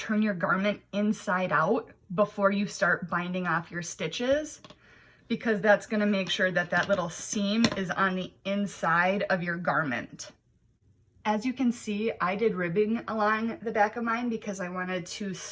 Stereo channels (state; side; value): identical; both; correlation 1.00